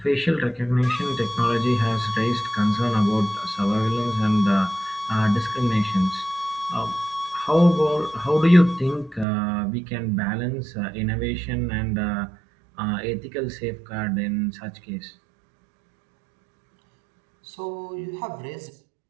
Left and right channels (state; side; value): drops out; left; at 9.2 s